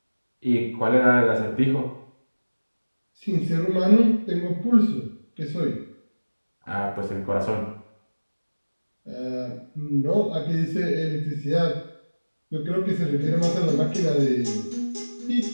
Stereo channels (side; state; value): both; inverted; correlation -1.00